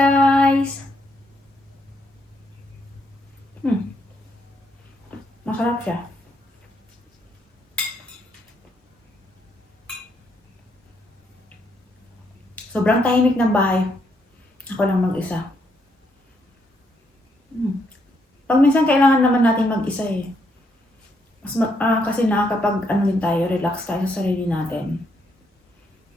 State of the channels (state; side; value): normal; both; correlation 0.75